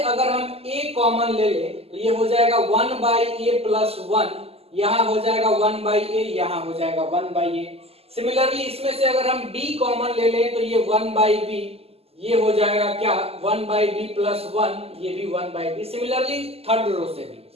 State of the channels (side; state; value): left; late; 0.29 ms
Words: अगर हम a कॉमन ले लें तो ये हो जाएगा 1 बाई ए प्लस 1, यहां हो जाएगा 1 बाई ए, यहां हो जाएगा 1 बाई ए। सिमिलरली इसमें से अगर हम b कॉमन ले लें तो ये 1 बाई बी, ये हो जाएगा क्या 1 बाई बी प्लस 1, ये भी 1 by b. Similarly third row से